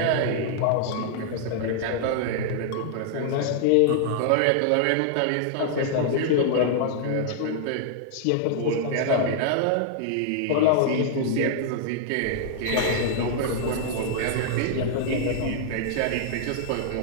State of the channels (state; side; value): different; both; correlation -0.01